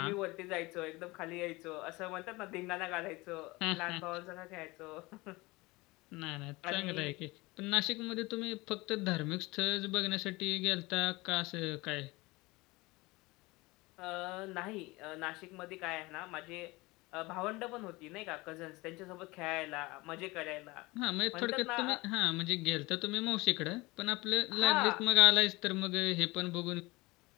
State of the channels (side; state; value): right; quieter; 22.5 dB